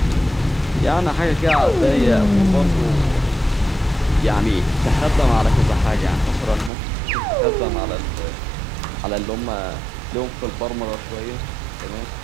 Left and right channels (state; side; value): drops out; left; at 6.7 s